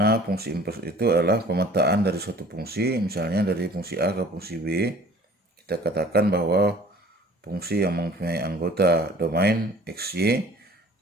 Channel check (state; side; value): normal; both; correlation 0.49